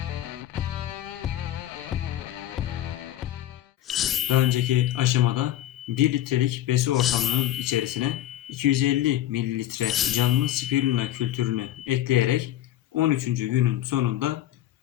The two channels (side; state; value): right; quieter; 13.1 dB